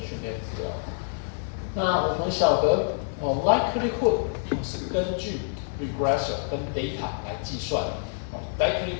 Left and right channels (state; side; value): silent; right; digital silence